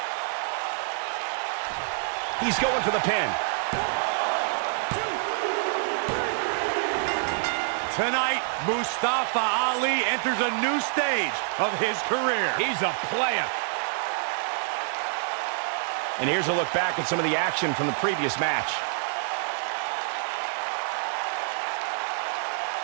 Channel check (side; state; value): left; silent; digital silence